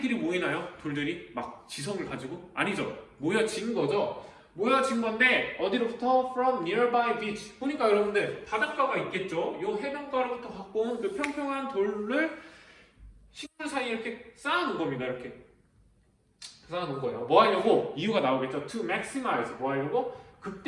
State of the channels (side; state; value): both; identical; correlation 1.00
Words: 모이나요? 돌들이 막 지성을 가지고? 아니죠. 모여진 거죠. 모여진 건데 어디로부터? From nearby beach. 보니까 여러분들 바닷가가 있겠죠. 요 해변가로부터 갖고 온 그 평평한 돌을 식물 사이에 이렇게 쌓아놓은 겁니다. 이렇게 쌓아놓은 거예요. 뭐 하려고? 이유가 나오겠죠. To maximize. 뭐 하려고?